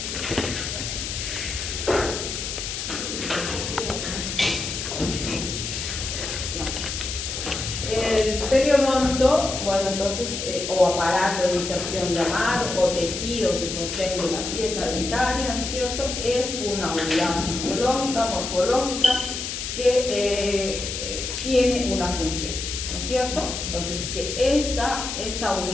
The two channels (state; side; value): noise; left; hiss, 5 dB below the sound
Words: El periodonto, bueno, entonces, o aparato de inserción llamado, o tejidos de sostén de la pieza dentaria, ¿no es cierto? Es una unidad fisiológica, morfológica, que tiene una función, ¿no es cierto? Entonces, que esta